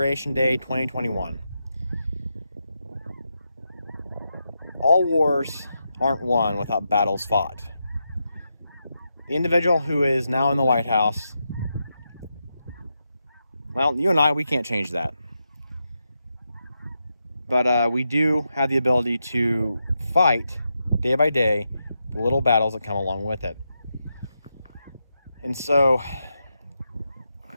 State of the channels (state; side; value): inverted; both; correlation -0.86